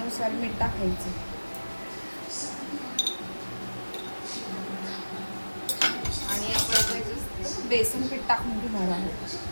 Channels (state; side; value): inverted; both; correlation -1.00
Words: मीठ टाकायचं आणि आपण बेसन पीठ टाकून घेणार आहोत।